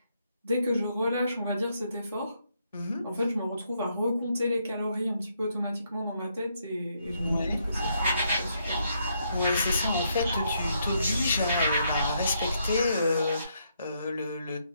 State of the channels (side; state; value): both; inverted; correlation -0.75